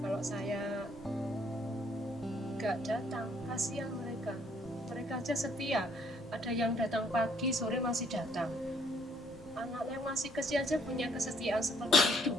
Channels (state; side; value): noise; right; rumble, 24 dB below the sound